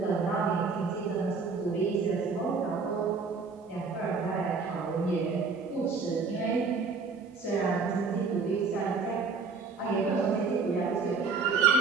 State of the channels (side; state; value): left; quieter; 4.7 dB